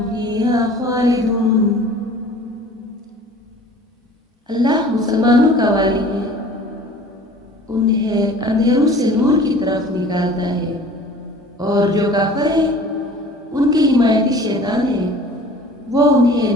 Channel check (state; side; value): normal; both; correlation 0.46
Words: فيها خالدون۔ اللہ مسلمانوں کا والی ہے، انہیں اندھیروں سے نور کی طرف نکالتا ہے، اور جو کافر ہیں ان کے حمایتی شیطان ہیں، وہ